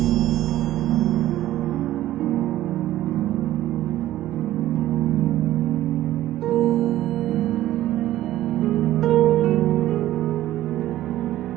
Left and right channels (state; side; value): quieter; left; 14.2 dB